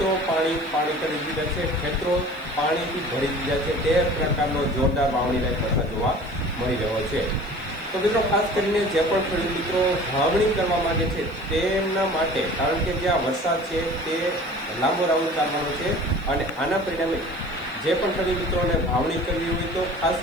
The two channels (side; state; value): left; noise; hiss, 29 dB below the sound